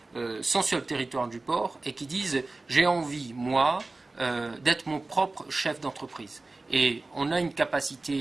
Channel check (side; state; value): left; quieter; 3.2 dB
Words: sont sur le territoire du port et qui disent « j'ai envie, moi, d'être mon propre chef d'entreprise ». Et on a une